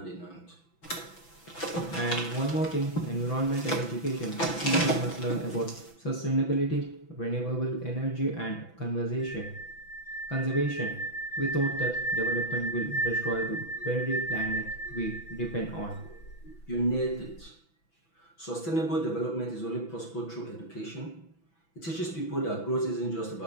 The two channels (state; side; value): late; right; 6.0 ms